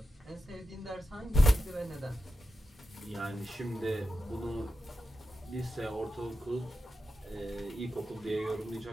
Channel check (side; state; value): both; normal; correlation 0.90